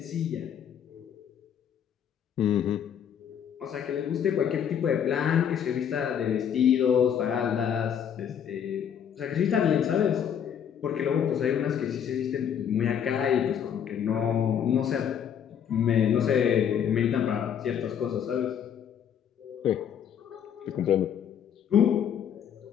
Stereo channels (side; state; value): right; quieter; 8.6 dB